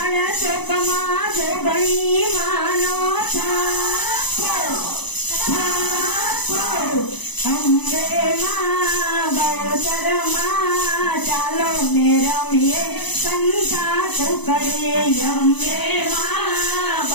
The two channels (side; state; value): right; late; 0.99 ms